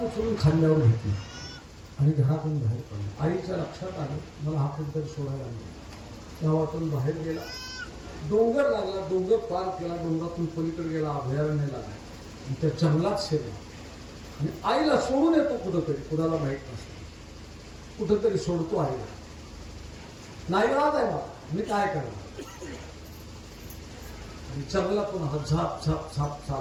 उचलून खांद्यावर घेतलं आणि घरातून बाहेर पडलं. आईच्या लक्षात आलं, मला हा कुठेतरी सोडायला नाही. गावातून बाहेर गेला, डोंगर लागला, डोंगर पार केला, डोंगरातून पलीकडे गेला, अभयारण्य लागला आणि त्या जंगलात शिरला. आणि आईला सोडून येतो कुठंतरी, कुणाला माहीत नसतं, कुठंतरी सोडतो आईला. नाईलाज आहे मला, मी काय करणार. आणि जंगलातून हा झाप झाप झाप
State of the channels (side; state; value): both; identical; correlation 1.00